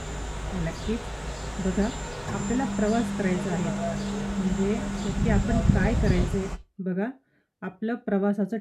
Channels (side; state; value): both; identical; correlation 1.00